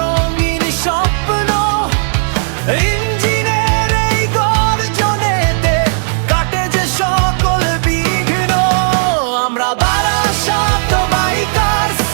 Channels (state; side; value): silent; left; digital silence